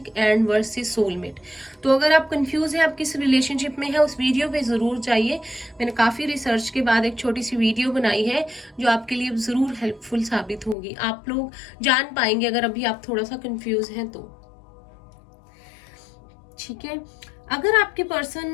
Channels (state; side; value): drops out; right; at 10.8 s